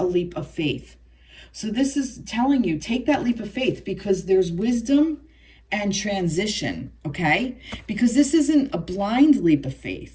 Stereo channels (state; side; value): identical; both; correlation 1.00